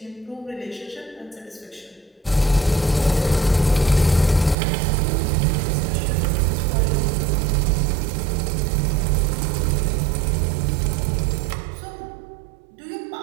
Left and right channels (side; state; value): left; drops out; at 4.5 s